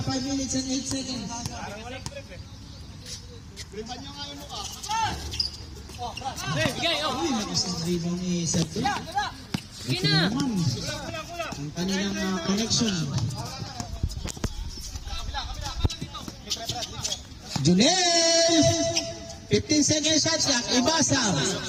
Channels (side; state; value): both; identical; correlation 1.00